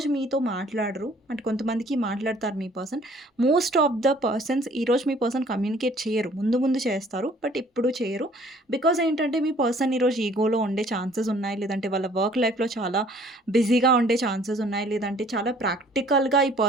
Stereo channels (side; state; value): both; normal; correlation 0.56